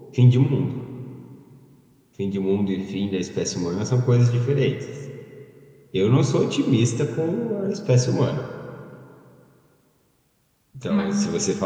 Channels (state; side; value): identical; both; correlation 1.00